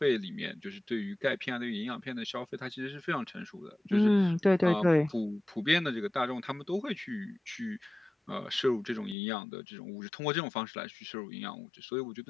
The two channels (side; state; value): right; drops out; at 9.2 s